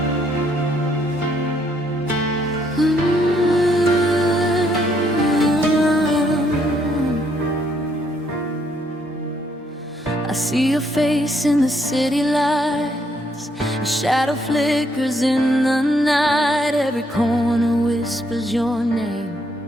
I see your face in the city lights. A shadow flickers in the night. Every corner whispers your name,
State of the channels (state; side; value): normal; both; correlation 0.71